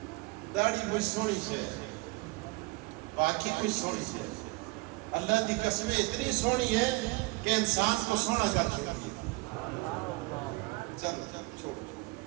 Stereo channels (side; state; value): left; quieter; 24.5 dB